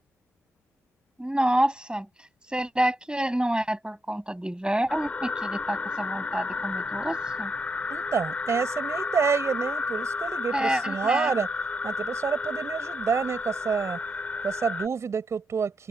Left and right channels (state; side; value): normal; both; correlation 0.82